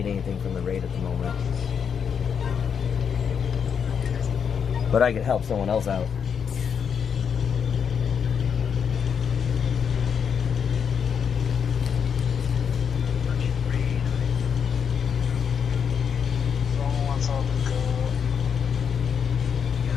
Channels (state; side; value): quieter; right; 7.1 dB